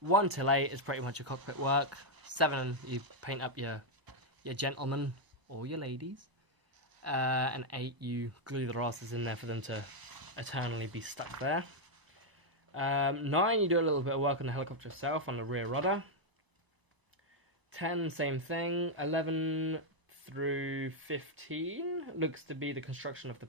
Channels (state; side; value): late; left; 1.0 ms